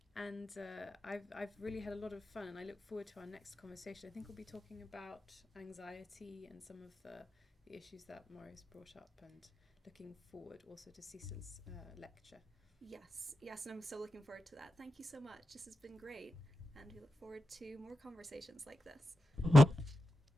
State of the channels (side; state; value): both; normal; correlation 0.91